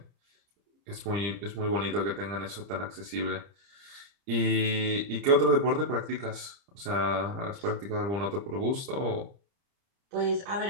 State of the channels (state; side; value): late; left; 30 ms